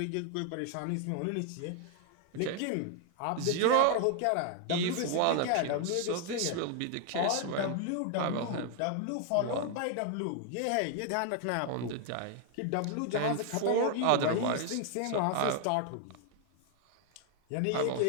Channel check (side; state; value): both; different; correlation 0.00